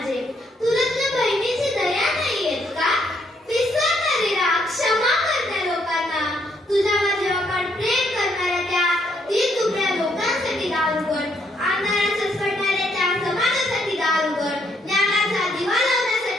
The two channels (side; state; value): both; normal; correlation 0.72